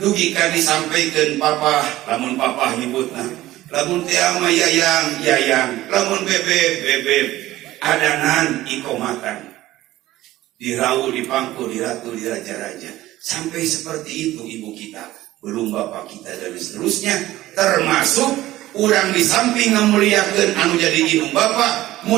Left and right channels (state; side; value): quieter; left; 16.0 dB